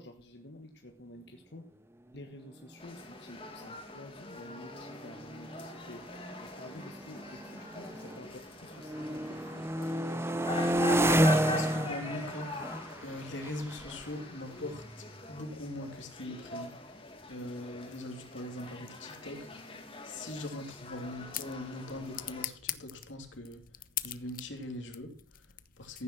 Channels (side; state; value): both; normal; correlation 0.64